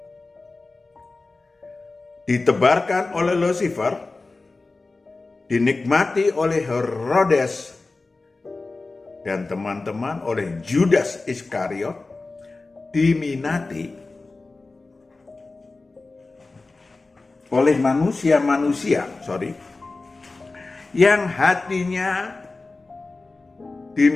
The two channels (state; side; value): quieter; right; 3.5 dB